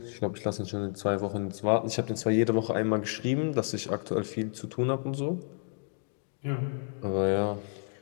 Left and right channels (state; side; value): silent; right; 57 dB below the other